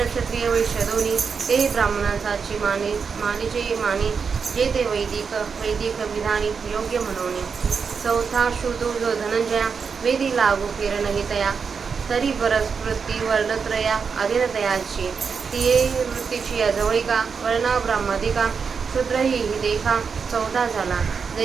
क्षत्रिय वैश्य दोन्ही ते ब्राह्मणांची मानीचे मानी जे ते वैदिक विधानी योग्य म्हणून चौथा शूदो जो धनंजया वेदी लागू किरण तया तरी परस वृत्ती वर्णत्रया अधीनतयाची तिये वृत्तीची या जवळिका वर्णा ब्राह्मदिका शूद्र ही देखा चौथा झाला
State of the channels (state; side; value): quieter; left; 5.8 dB